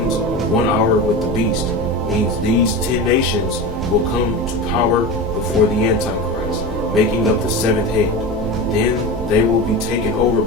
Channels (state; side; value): normal; both; correlation 0.25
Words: 1 hour with the beast, means these 10 nations will come to power before the Antichrist, making up the 7th head. Then they will be taken over